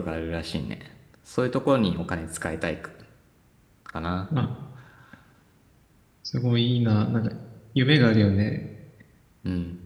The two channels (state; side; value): identical; both; correlation 1.00